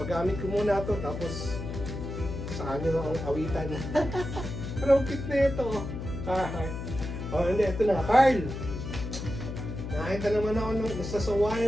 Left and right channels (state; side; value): noise; left; hum, 6 dB below the sound